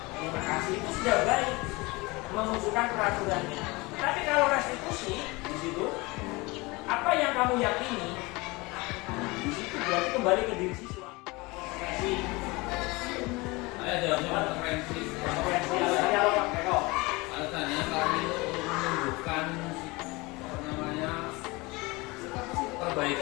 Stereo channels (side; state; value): right; quieter; 24.0 dB